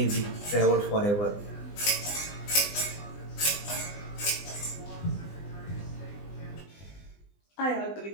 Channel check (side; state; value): right; late; 20 ms